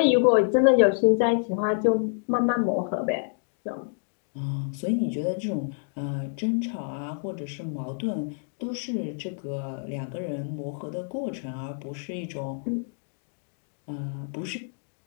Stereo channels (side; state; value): right; silent; digital silence